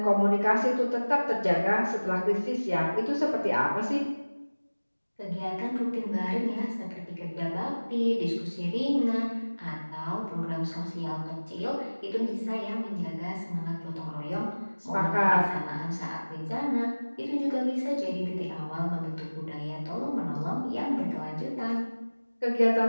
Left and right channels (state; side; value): inverted; both; correlation -1.00